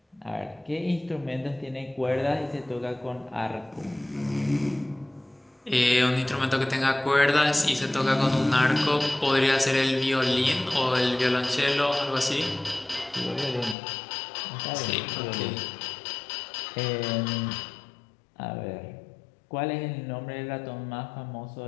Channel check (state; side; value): drops out; right; at 13.8 s